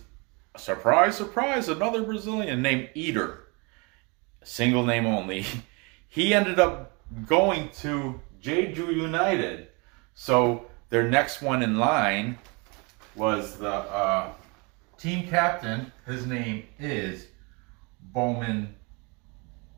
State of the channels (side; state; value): left; quieter; 30.0 dB